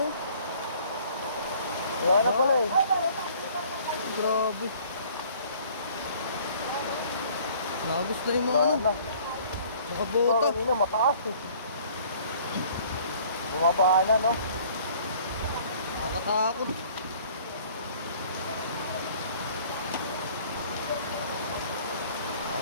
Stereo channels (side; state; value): both; inverted; correlation -0.54